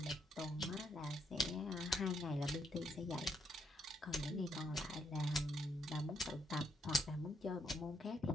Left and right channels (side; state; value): both; normal; correlation 0.75